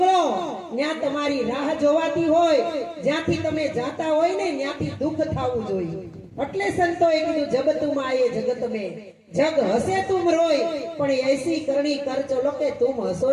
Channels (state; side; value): identical; both; correlation 1.00